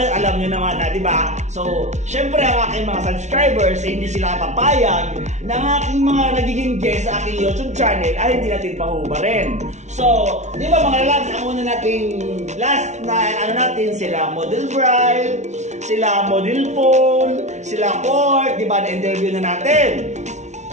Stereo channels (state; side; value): late; left; 0.33 ms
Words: alam nyo naman na, di ba? So, syempre ang aking mga subscribers hindi sila papayag na ang aking mga nagiging guest sa aking YouTube channel ay hindi natin pahubarin. So, di ba mga lads, ang una nating last na ano natin, sila Model Bride, sila Model Phone, sila Court, di ba, na-interview na natin.